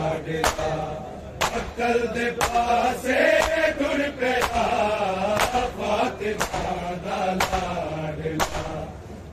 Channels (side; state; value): both; identical; correlation 1.00